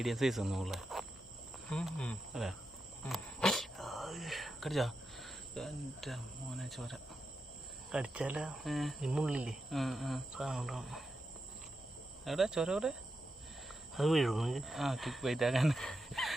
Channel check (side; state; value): both; normal; correlation 0.88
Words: സൈസ് ഒന്നും ഉള്ളേ അല്ലേ? കടിച്ചാ? എൻ്റെ മോനെ ചോര കടിച്ചാല മുള്ളില്ലേ എവിടെ ചോര? എവിടെ? അത് വീഴും. ആ കിക്ക് വെയിറ്റ് ആക്കാൻ